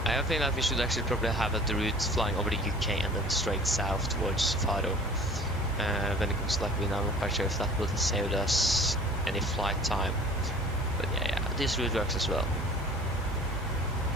I think that we should actually probably have the route flying over the UK and then straight south towards Faro. When it comes to like, I'm not quite sure if that would save us any flight time, but yeah, this route works as well.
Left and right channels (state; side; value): normal; both; correlation 0.47